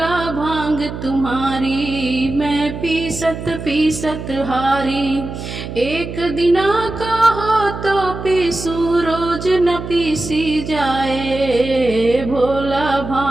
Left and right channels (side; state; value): right; noise; hum, 8 dB below the sound